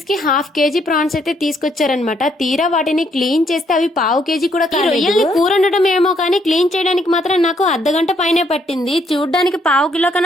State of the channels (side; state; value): both; normal; correlation 0.71